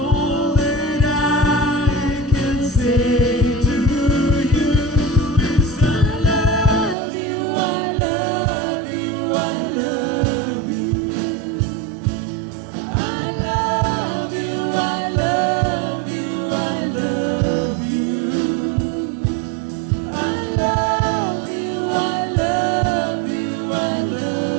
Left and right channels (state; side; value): drops out; left; at 7.0 s